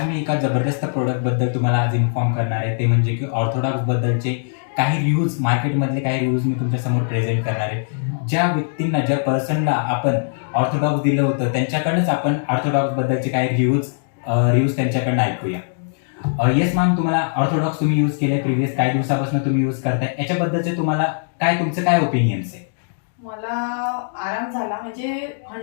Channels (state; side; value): silent; right; digital silence